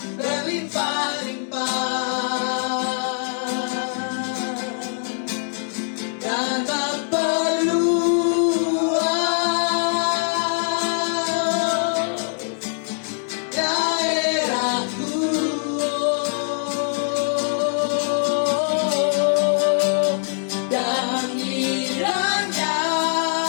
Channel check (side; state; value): right; silent; digital silence